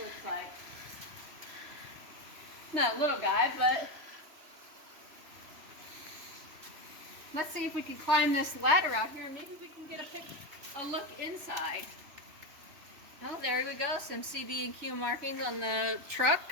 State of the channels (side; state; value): left; late; 3.1 ms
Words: looks like. Not a little guy, but let's see if we can climb this ladder out here and maybe we can get a look inside. Oh, there we go. Some CB&Q markings on the